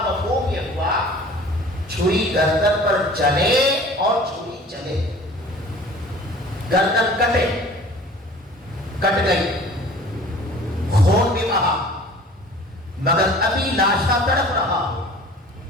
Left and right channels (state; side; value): normal; both; correlation 0.46